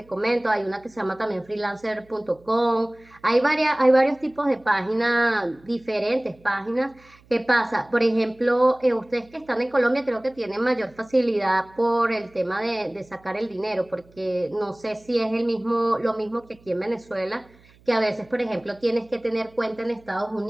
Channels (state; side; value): noise; right; hum, 28 dB below the sound